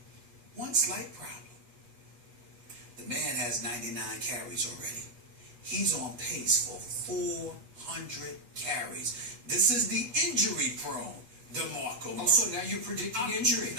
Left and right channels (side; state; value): left; late; 8.2 ms